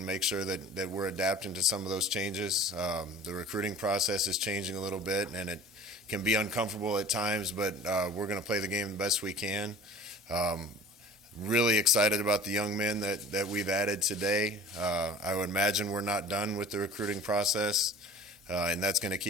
make sure that we're adapting to some of those changes. The recruiting process is changing a little bit, and it can be uncomfortable at times, but we're going to play the game the best we can. Really excited about the young men that we've added today. I would imagine we're not done with the recruiting process, and that's going to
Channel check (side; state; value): both; normal; correlation 0.42